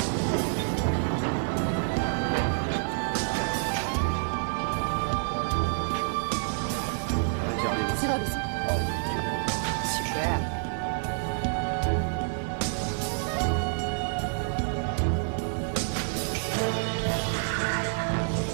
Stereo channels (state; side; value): silent; left; 59 dB below the other